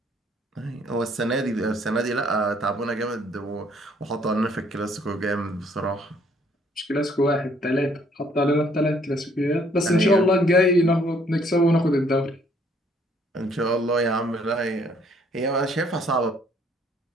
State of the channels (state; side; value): normal; both; correlation 0.64